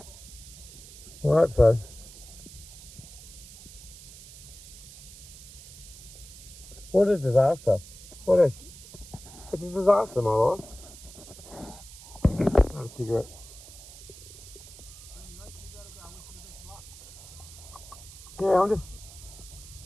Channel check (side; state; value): right; noise; hiss, 17 dB below the sound